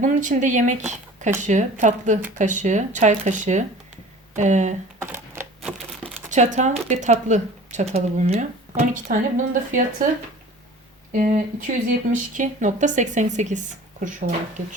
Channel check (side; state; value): both; normal; correlation 0.43